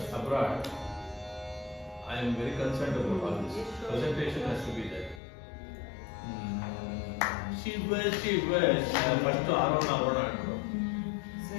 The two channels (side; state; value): right; drops out; at 5.2 s